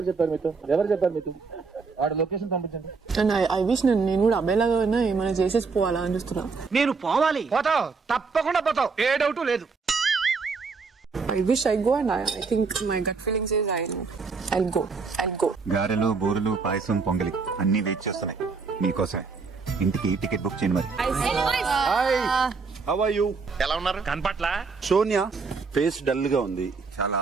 చెప్పారు మీతో? వాడి లొకేషన్ పంపించండి. And I wish నేను కూడా అబ్బాయిలాగా ఏమైనా చేసేసి పోవాలా అని చూస్తున్నా. నేను పోవాలి. పోతావు, తప్పకుండా పోతావు, ఏ డౌట్ లేదు. I wish I go and I think my gut feeling says I'll go. గారెలు, బూరెలు, పాయసం, పొంగలి అన్ని వెయిట్ చేస్తున్నాయి మీకోసమే. ఇంటికి టికెట్ బుక్ చేయండి మరి. Hi, how are you? ఎలా ఉన్నారు? కనపట్ల సోనియా ఫేస్ డల్ గా ఉంది చాలా.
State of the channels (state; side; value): quieter; left; 4.7 dB